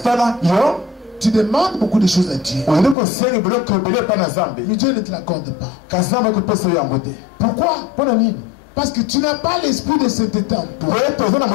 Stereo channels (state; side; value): drops out; right; at 3.0 s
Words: tu demandes beaucoup de choses à Dieu, mais Dieu ne te l'accorde pas. Pourquoi? Parce que tu n'as pas l'esprit de sainteté en toi.